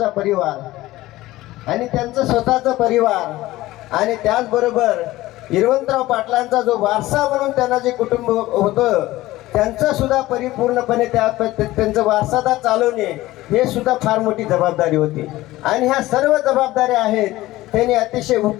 परिवार आणि त्यांचं स्वतःचा परिवार आणि त्याचबरोबर हिरवंतराव पाटलांचा जो वारसा म्हणून त्यांना जे कुटुंब होतं, त्यांचं सुद्धा परिपूर्णपणे त्यांचं वारसादार चालवणे हे सुद्धा फार मोठी जबाबदारी होती. आणि ह्या सर्व जबाबदाऱ्या आहेत त्यांनी अतिशय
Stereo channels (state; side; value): quieter; right; 17.2 dB